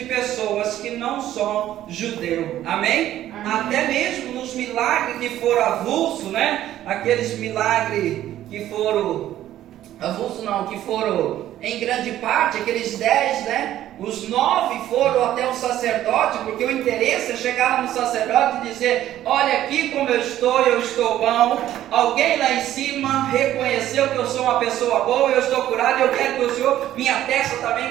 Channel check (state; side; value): quieter; left; 12.8 dB